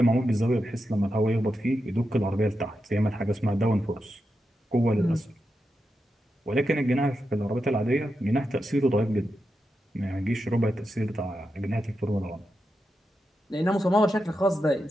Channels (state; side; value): normal; both; correlation 0.88